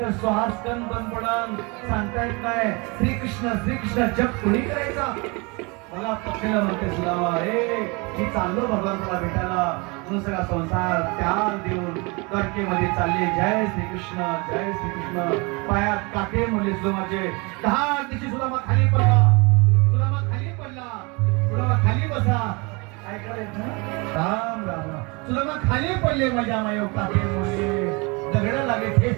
श्वासकण बंद पडन सांगता येत नाही. श्रीकृष्ण जप कोणी करायचा. मला पत्नीला म्हणते सुदामा हे मी चाललो भगवंताला भेटायला म्हणून सगळा संसार त्याग देऊन द्वारकेमध्ये चालले. जय श्रीकृष्ण, जय श्रीकृष्ण. पायात काटे म्हणले सुदामाचे. 10 दिवशी सुदामा खाली पडला. सुदामा खाली पडला. सुदामा खाली बसा. काय करायचं राम राम राम. सुदामा खाली पडले. माझ्या मायो काटे म्हणले दगड लागले,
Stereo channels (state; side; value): quieter; left; 28.4 dB